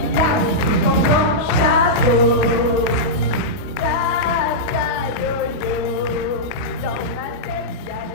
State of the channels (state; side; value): late; right; 28 ms